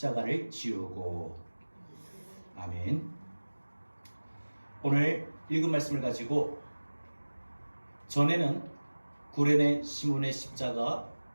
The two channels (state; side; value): inverted; both; correlation -1.00